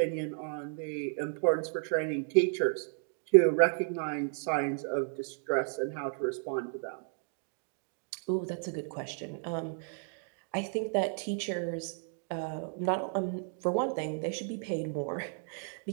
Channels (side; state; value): left; silent; 56 dB below the other